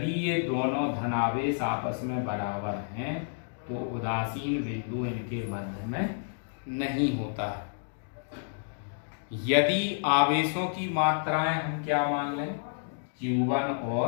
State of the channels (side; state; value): right; silent; digital silence